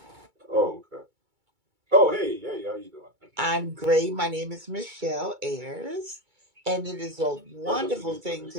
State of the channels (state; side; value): late; left; 2.3 ms